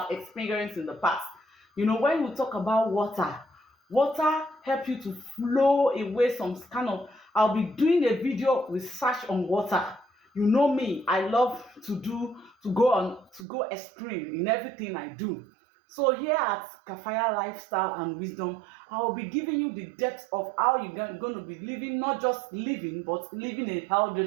experienced in the past. You know, when we talk about water, water help you to flow away some kind of. I'll be doing a video research on water. You know me, I love to go extreme in everything I do. So here at Kafaya Lifestyle and Wisdom, I will be giving you the depth of how you're going to be living, not just living, but living a healthy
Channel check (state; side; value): drops out; left; at 13.5 s